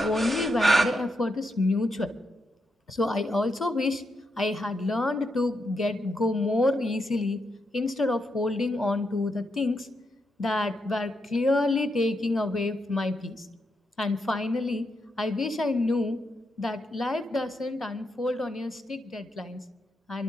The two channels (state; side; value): normal; both; correlation 0.83